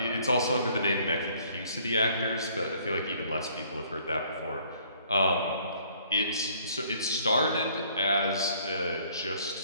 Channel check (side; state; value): both; inverted; correlation -0.60